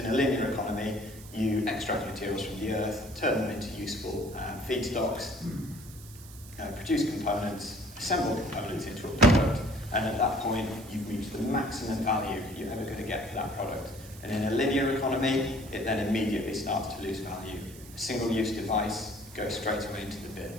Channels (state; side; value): noise; right; hiss, 18 dB below the sound